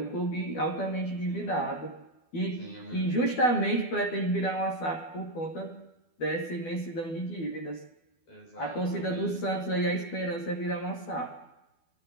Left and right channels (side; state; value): right; late; 12 ms